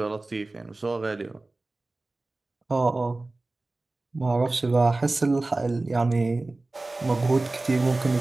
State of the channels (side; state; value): left; quieter; 3.1 dB